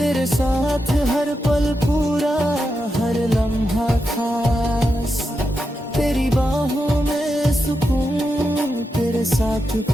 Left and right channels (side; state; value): both; normal; correlation 0.87